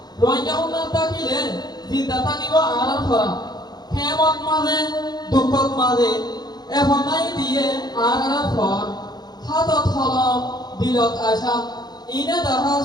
রোয়ান যাব না তাকিলে জিন্দা থাকিব আর আর খরা হেমত মাঝে দুঃখত মাঝে এখন নাই দিয়ে আর আর ফর হাতত হলম দিলত আশা ইনে দেখা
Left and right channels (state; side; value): late; right; 0.20 ms